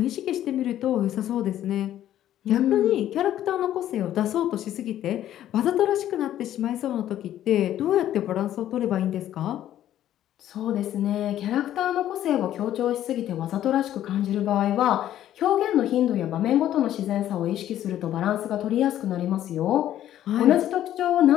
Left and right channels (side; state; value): right; quieter; 12.0 dB